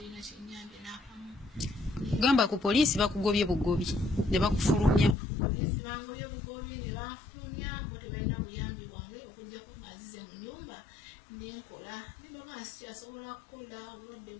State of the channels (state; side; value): drops out; right; at 5.2 s